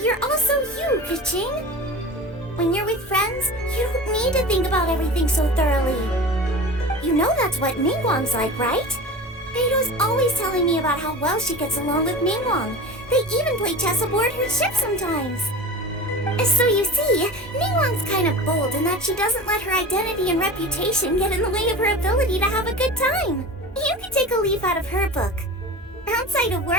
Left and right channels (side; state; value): both; normal; correlation 0.33